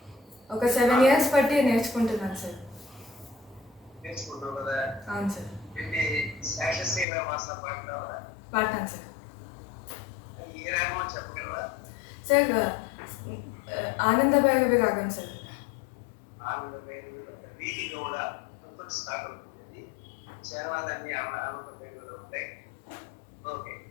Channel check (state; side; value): drops out; right; at 7.1 s